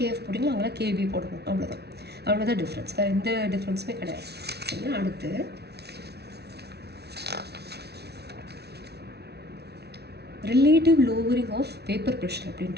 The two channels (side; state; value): left; late; 0.48 ms